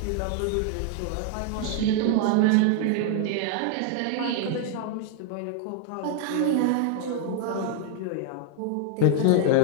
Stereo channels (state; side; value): different; both; correlation 0.00